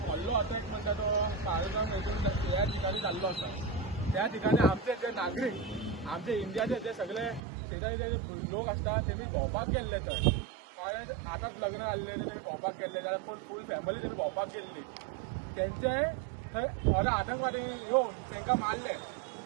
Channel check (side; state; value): left; drops out; at 7.4 s